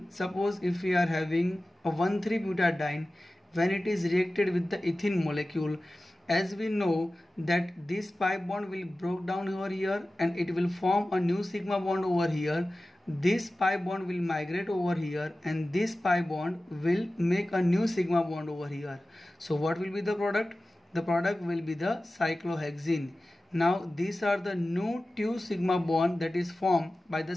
suppose if we are having a 1,3-butadiene, when it is reacted with the ethene molecule, as we know that this pi bond will break down over here and it will form a new sigma bond over here. This pi bond will migrate over here and this pi bond will make a new sigma bond over here. So what will be the product? The product will be the cyclohexene. Now these are the new 2 sigma bond that is formed by the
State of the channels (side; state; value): both; normal; correlation 0.96